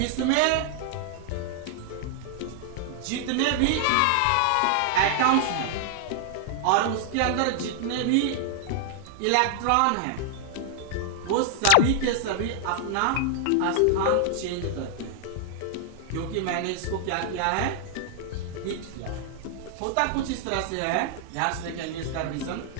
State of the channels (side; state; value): both; different; correlation -0.01